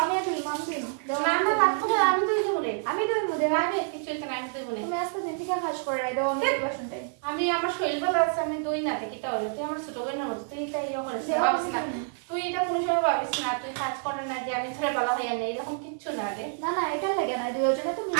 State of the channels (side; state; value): left; silent; 59 dB below the other